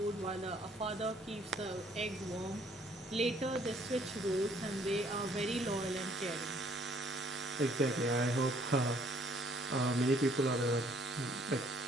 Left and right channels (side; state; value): both; normal; correlation 0.63